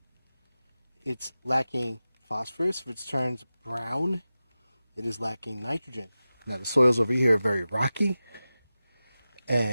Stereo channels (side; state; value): both; inverted; correlation -0.95